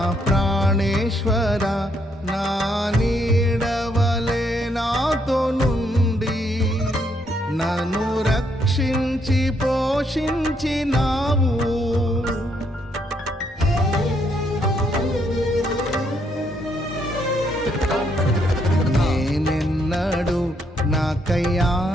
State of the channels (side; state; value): both; normal; correlation 0.73